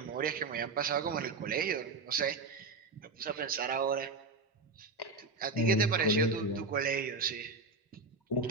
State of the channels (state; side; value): quieter; left; 3.7 dB